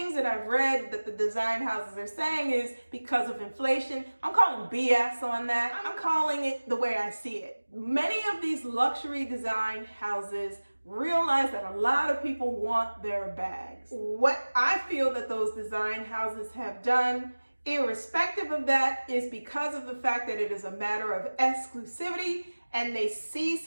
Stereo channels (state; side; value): inverted; both; correlation -1.00